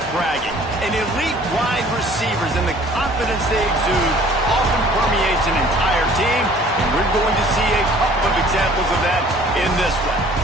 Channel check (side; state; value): both; normal; correlation 0.53